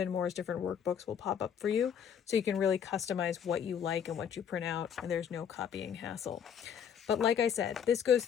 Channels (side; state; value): right; quieter; 8.1 dB